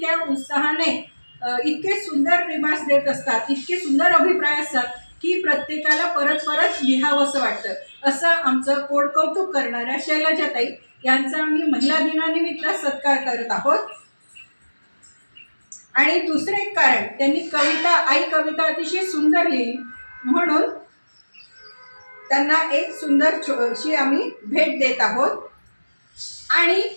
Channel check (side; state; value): both; inverted; correlation -1.00